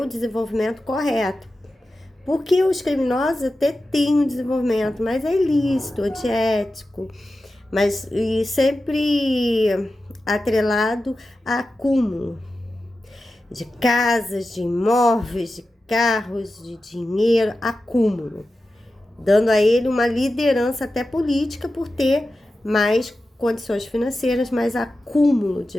o desenvolvimento correto. Porque os criminosos até têm um desenvolvimento, mas é ilícito, antiético, mas e sempre atrelado a acúmulo de casas, de imóveis, de carros, de dinheiro, acúmulo, dando a ele uma liderança até política por ter mais condições financeiras, mais acúmulo de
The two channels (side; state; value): both; normal; correlation 0.93